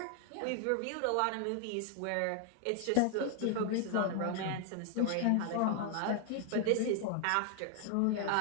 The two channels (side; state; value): both; different; correlation 0.00